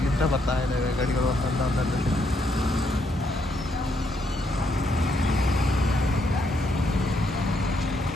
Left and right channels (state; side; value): normal; both; correlation 0.75